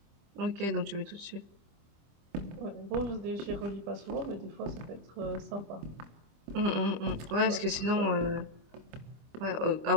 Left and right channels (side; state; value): left; late; 25 ms